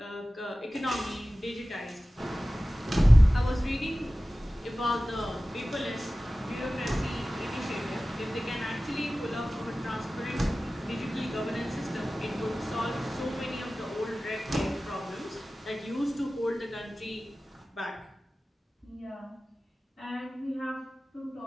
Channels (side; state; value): both; normal; correlation 0.96